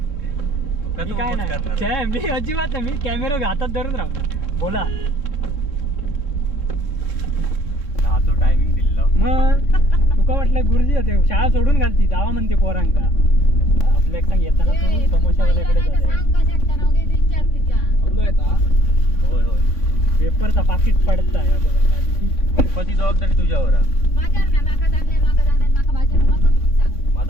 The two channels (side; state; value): right; late; 3.6 ms